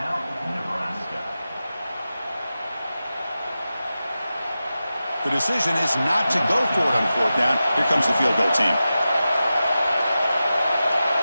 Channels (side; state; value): both; inverted; correlation -0.93